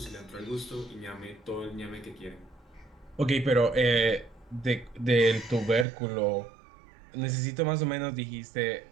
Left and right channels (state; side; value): drops out; left; at 5.9 s